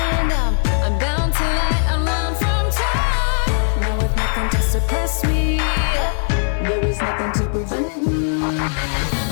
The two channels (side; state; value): right; silent; 62 dB below the other